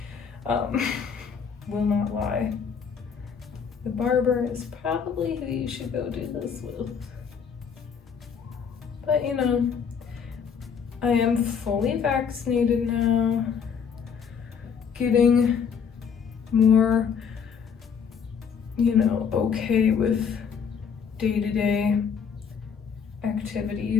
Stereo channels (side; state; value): right; quieter; 6.7 dB